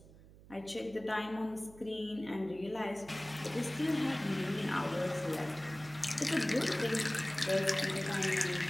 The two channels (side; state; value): right; noise; hum, 21 dB below the sound